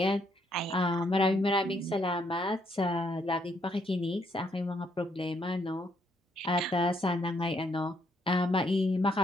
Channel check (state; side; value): normal; both; correlation 0.72